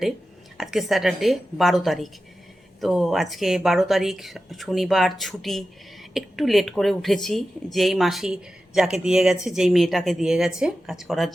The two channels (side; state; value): both; normal; correlation 0.93